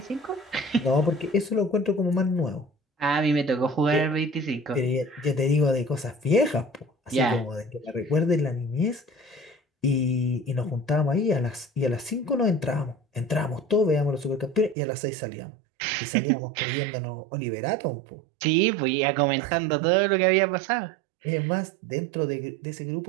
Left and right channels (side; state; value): left; drops out; at 14.8 s